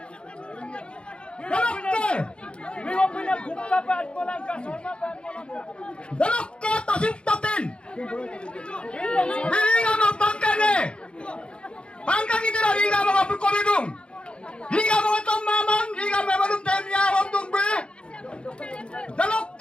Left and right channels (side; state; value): right; late; 0.056 ms